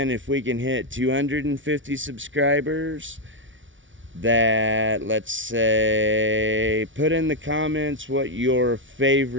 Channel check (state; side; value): late; left; 0.56 ms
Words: If we can hit 250 subscribers, that, let's say, put in the comments what your